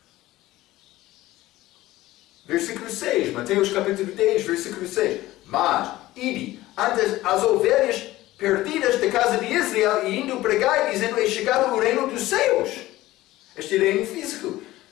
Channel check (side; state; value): right; quieter; 16.8 dB